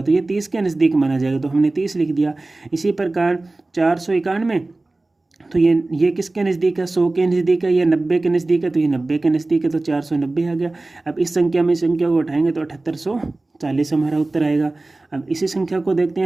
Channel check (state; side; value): quieter; left; 3.0 dB